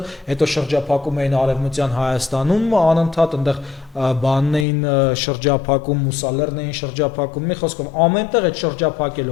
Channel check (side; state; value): right; drops out; at 4.7 s